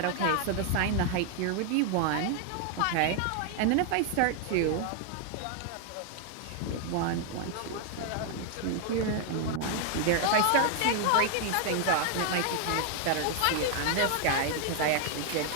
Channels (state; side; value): different; both; correlation 0.00